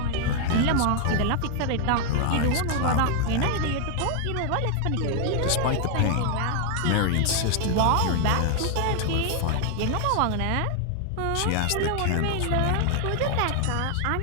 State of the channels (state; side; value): different; both; correlation 0.00